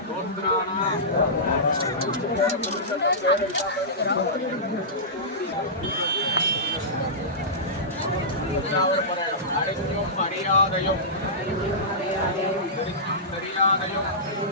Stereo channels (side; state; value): both; normal; correlation -0.17